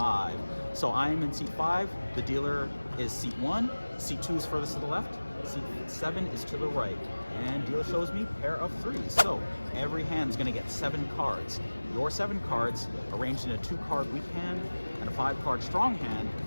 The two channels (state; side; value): inverted; both; correlation -1.00